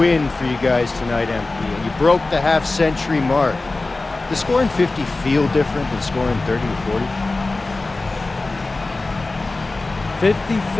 for you guys tonight, MP. You broke the half-century mark. Does scoring 50 feel different than scoring 30 or 40? 50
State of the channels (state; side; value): quieter; right; 3.3 dB